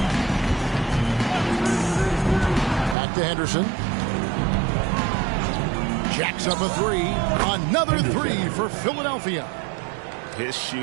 Back to Henderson. Jacks up a 3. Another 3 for Philadelphia. His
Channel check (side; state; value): left; drops out; at 3.0 s